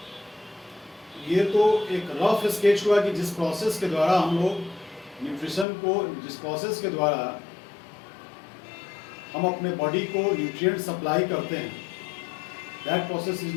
ये तो एक रफ स्केच हुआ कि जिस प्रोसेस के द्वारा हम लोग न्यूट्रिशन को, जिस प्रोसेस के द्वारा हम अपने बॉडी को न्यूट्रिएंट सप्लाई करते हैं, that process is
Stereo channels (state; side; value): drops out; right; at 5.7 s